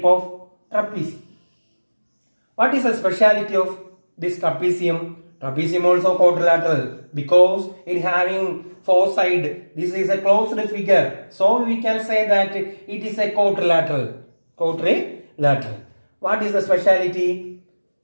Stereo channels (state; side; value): inverted; both; correlation -1.00